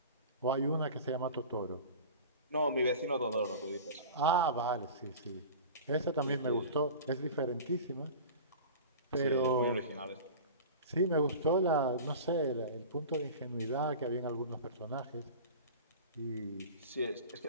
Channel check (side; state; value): both; inverted; correlation -0.36